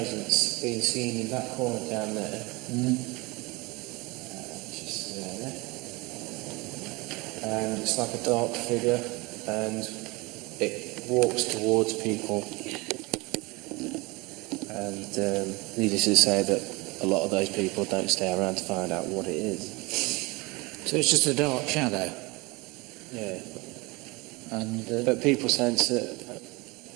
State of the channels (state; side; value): quieter; left; 24.7 dB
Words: being seen in that corner down there. Just there. And it's like a dark figure, and it walks towards people. And needless to say that a lot of those people don't stay around to find out what it is. So it's just a dark shadow. Yeah. And But people sense that